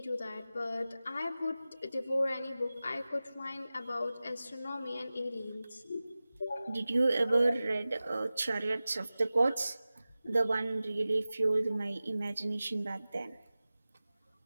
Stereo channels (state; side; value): inverted; both; correlation -0.96